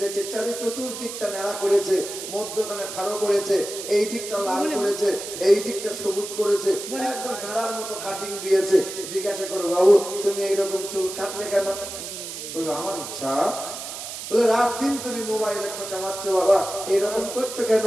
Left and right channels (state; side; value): noise; right; hiss, 8 dB below the sound